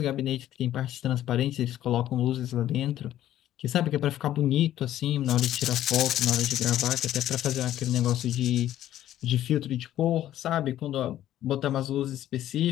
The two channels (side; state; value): right; quieter; 12.6 dB